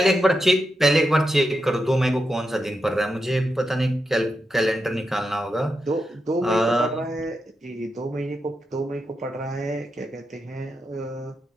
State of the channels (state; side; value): normal; both; correlation 0.86